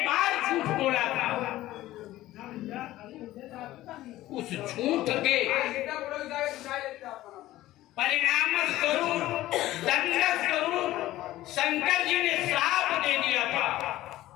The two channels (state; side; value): quieter; right; 15.7 dB